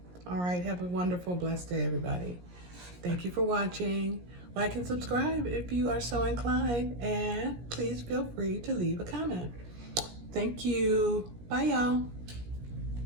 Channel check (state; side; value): late; left; 17 ms